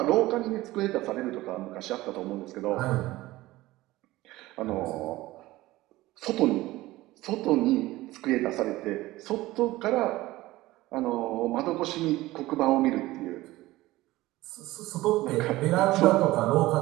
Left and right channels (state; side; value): quieter; left; 17.9 dB